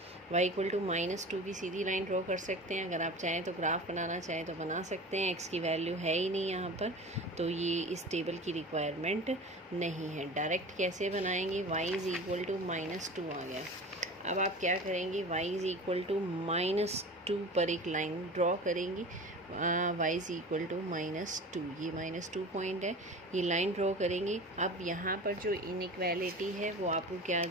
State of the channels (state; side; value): normal; both; correlation 0.36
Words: y इक्वल टू -2 की सीधी लाइन ड्रॉ कर सकते हैं। अगर आप चाहें तो ग्राफ बनाना चाहें तो बना सकते हैं। x की वैल्यू है ही नहीं यहाँ पर, तो ये इस टेबल की रिक्वायरमेंट नहीं है। डायरेक्ट कैसे बनाएंगे, y इज़ इक्वल टू -2 आ गया। अब आप क्या करेंगे, y इज़ इक्वल टू -2 पर एक लाइन ड्रॉ करेंगी। y इज़ इक्वल टू -2, ये -2 पॉइंट है, ये लाइन ड्रॉ करेंगे। अब यहाँ पर जो इनइक्वालिटी है वो आपको क्या